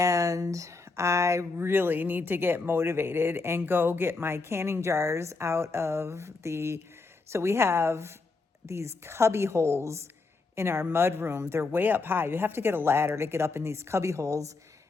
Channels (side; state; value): right; quieter; 3.9 dB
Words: I really need to get motivated and go get my canning jars out of so we have these cubby holes in our mud room. They're way up high. You have to get a ladder to get up in these cubby holes.